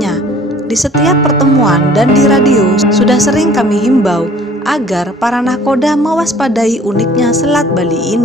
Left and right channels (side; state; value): both; normal; correlation 0.52